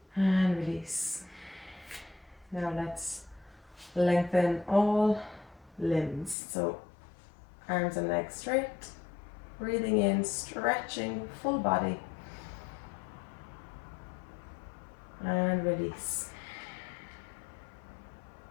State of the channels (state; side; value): drops out; right; at 6.4 s